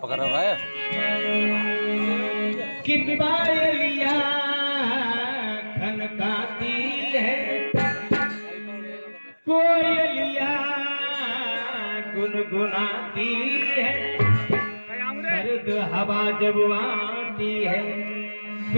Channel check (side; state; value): both; inverted; correlation -1.00